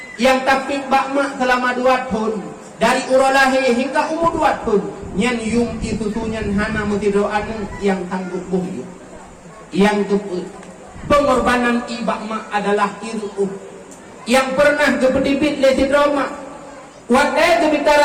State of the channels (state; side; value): identical; both; correlation 1.00